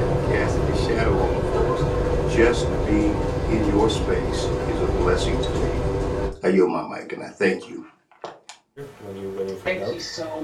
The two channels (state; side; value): identical; both; correlation 1.00